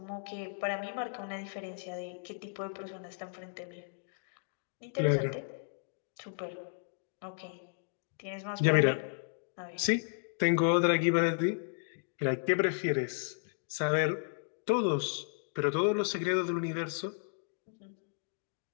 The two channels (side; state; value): right; silent; digital silence